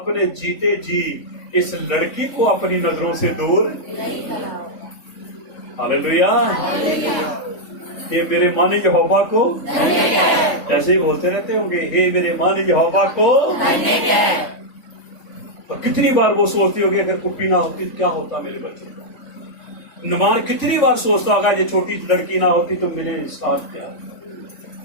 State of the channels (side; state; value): right; late; 3.5 ms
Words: जीते जी इस लड़की को अपनी नजरों से दूर। हालेलुया। ये मेरे माने यहोवा को, ऐसे ही बोलते रहते होंगे, हे मेरे माने यहोवा को। तो कितनी बार वो सोचती होगी अगर कुप्पी ना होती तो क्या होता मेरे बच्चे का। नुमान कितनी बार सोचता होगा ये छोटी लड़की ना होती तो मेरे साथ क्या।